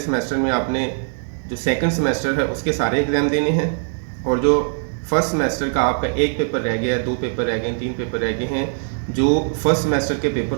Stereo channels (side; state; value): left; silent; digital silence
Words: में आपने जो सेकंड सेमेस्टर है उसके सारे एग्ज़ाम देने हैं। और जो फर्स्ट सेमेस्टर का आपका एक पेपर रह गया, दो पेपर रह गए, तीन पेपर रह गए हैं, जो फर्स्ट सेमेस्टर के पेपर